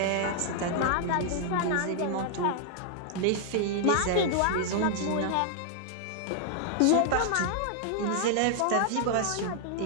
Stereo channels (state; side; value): different; both; correlation 0.00